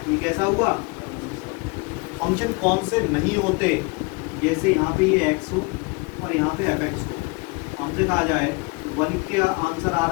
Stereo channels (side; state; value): right; quieter; 28.3 dB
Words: ये कैसा हुआ, फंक्शन कौन से नहीं होते, जैसे यहाँ पे ये x हो और यहाँ पे fx हो। हमसे कहा जाए 1 का आंसर आ